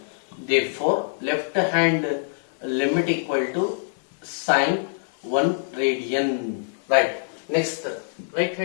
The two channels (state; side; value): silent; right; digital silence